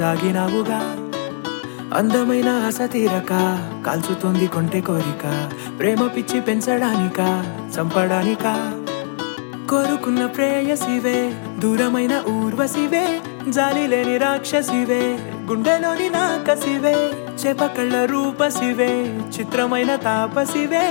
దాగినావుగా అందమైన ఆశ తీరక కాల్చుతోంది కొంటె కోరిక ప్రేమ పిచ్చి పెంచడానికా చంపడానికా కోరుకున్న ప్రేయసివే దూరమైన ఊర్వశివే జాలి లేని రాక్షసివే గుండెలోని నాకసివే చేపకళ్ళ రూపసివే చిత్రమైన తాపసివే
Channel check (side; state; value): right; silent; digital silence